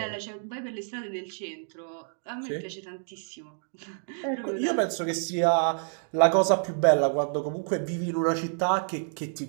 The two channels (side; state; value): left; silent; digital silence